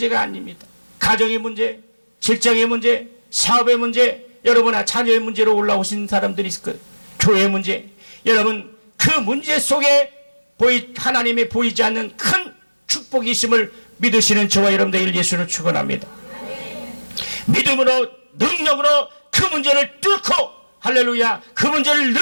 아닙니다. 가정의 문제, 직장의 문제, 사업의 문제, 여러분의 자녀의 문제로 올라오신 사람들이 있을 거예요. 교회의 문제, 여러분 그 문제 속에 하나님이 보이지 않는 큰 축복이 있음을 믿으시는 저와 여러분들 예수를 축원합니다. 믿음으로 능력으로 그 문제를 뚫고 할렐루야 그 문제를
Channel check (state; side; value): inverted; both; correlation -1.00